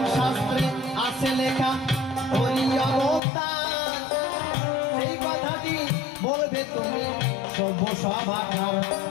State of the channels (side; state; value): right; drops out; at 3.2 s